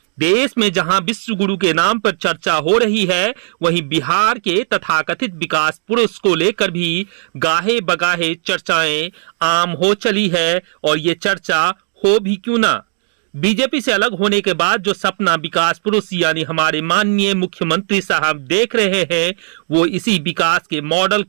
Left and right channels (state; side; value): silent; left; digital silence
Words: देश में जहां विश्व गुरु के नाम पर चर्चा हो रही है, वहीं बिहार के तथाकथित विकास पुरुष को लेकर भी गाहे बगाहे चर्चाएं आम हो चली है। और ये चर्चा हो भी क्यों ना। बीजेपी से अलग होने के बाद जो सपना विकास पुरुष यानी हमारे माननीय मुख्यमंत्री साहब देख रहे हैं, वो इसी विकास के मॉडल